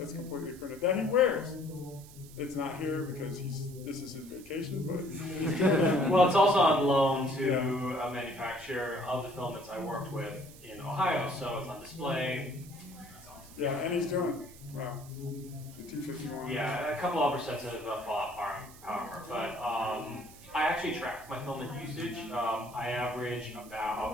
completely printed that he wears. It's not here because this is his vacation, but he's doing it. Well, it's also on loan to a manufacturer of the filaments I worked with in Ohio, so it's on display. Yeah, and he's doing it. Wow. The T51. Yeah, a couple other sets of Fallout power, but I actually track my filament usage. I average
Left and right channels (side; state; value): right; noise; hiss, 20 dB below the sound